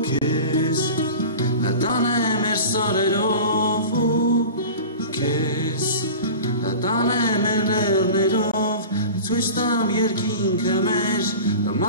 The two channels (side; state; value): both; inverted; correlation -0.35